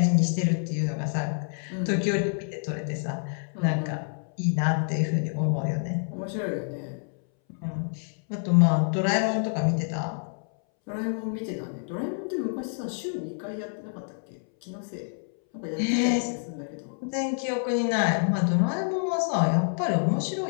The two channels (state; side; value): silent; right; 60 dB below the other